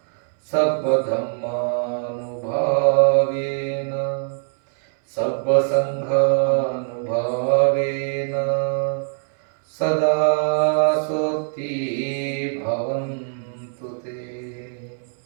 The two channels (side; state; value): left; silent; 64 dB below the other